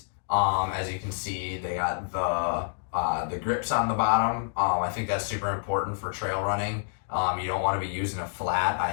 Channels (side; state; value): right; silent; digital silence